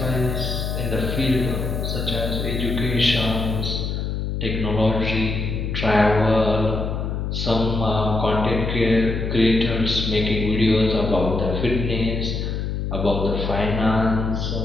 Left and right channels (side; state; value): left; noise; hum, 2 dB below the sound